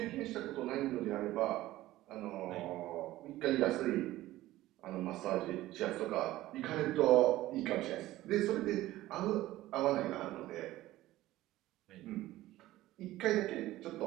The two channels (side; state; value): left; quieter; 16.1 dB